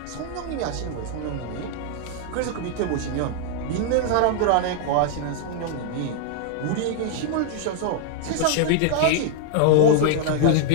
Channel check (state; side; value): different; both; correlation 0.00